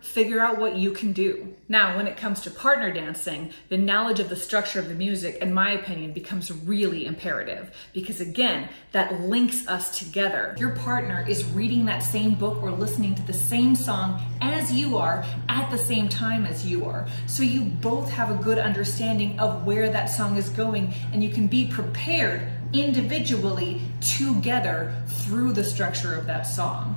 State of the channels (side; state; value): both; inverted; correlation -1.00